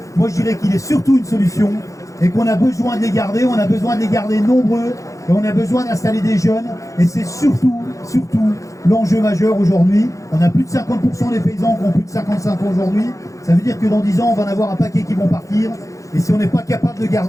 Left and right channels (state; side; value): late; right; 0.15 ms